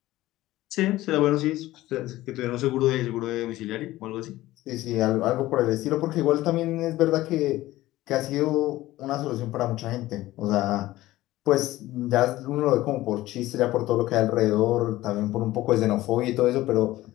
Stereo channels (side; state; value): right; quieter; 16.6 dB